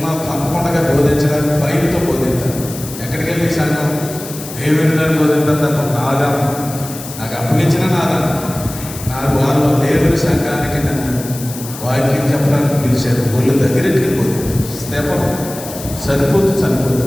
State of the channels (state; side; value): noise; left; hiss, 12 dB below the sound